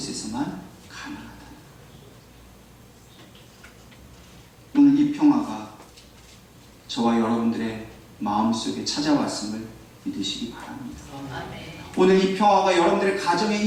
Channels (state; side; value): identical; both; correlation 1.00